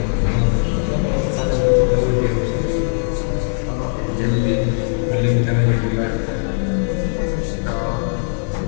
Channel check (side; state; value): right; silent; digital silence